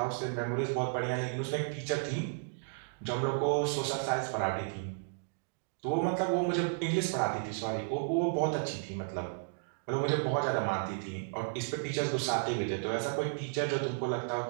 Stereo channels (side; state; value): left; silent; digital silence